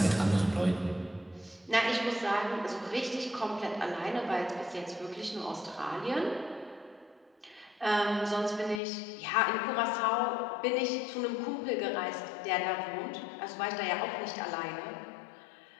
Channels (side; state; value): right; drops out; at 8.8 s